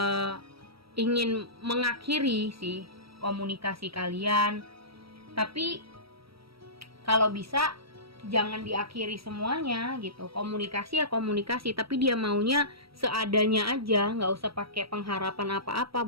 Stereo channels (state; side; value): late; left; 0.75 ms